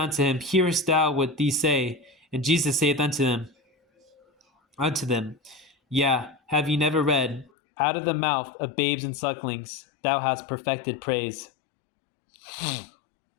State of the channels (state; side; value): drops out; right; at 7.5 s